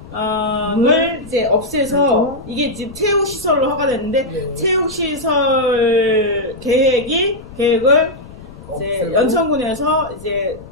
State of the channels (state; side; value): noise; left; rumble, 18 dB below the sound